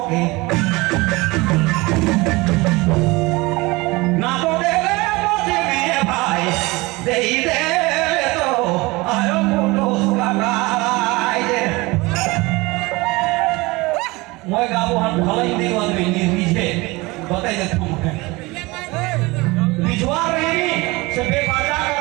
Moi gabuhan khalai di wan ini rije batai de tum rijuar ini sebe baca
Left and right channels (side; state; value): left; quieter; 23.0 dB